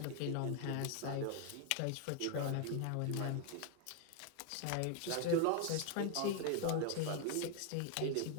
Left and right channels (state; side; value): different; both; correlation 0.00